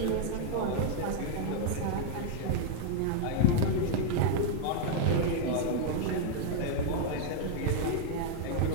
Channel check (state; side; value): different; both; correlation -0.01